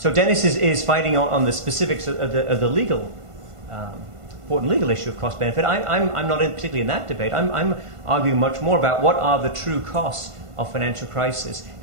Dennis is fighting on the specifics of the legal important legal issue of cost benefit. I'm not particularly in that debate. I'm arguing much more about what are the true costs of financial crisis.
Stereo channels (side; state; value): left; late; 1.5 ms